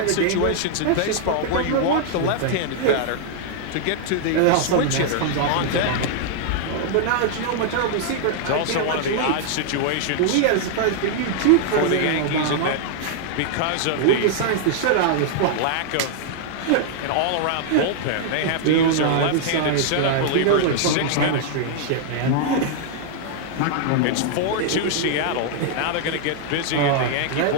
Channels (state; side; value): different; both; correlation -0.01